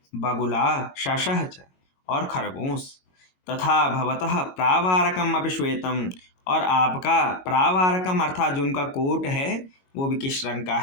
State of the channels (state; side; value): late; right; 22 ms